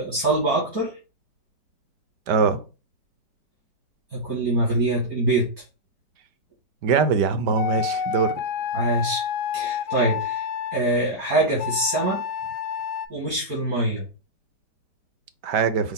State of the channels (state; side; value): late; left; 4.3 ms